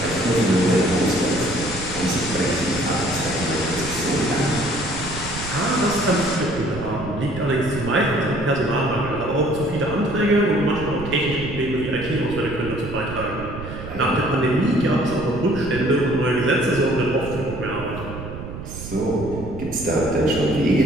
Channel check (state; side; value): noise; right; rumble, 10 dB below the sound